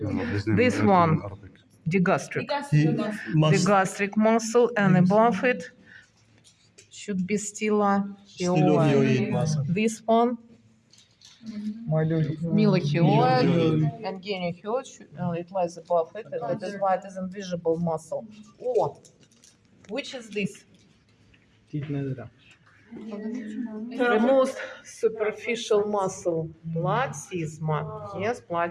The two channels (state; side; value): identical; both; correlation 1.00